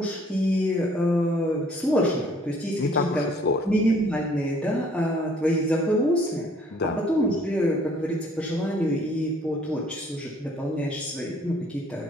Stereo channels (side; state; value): both; normal; correlation 0.60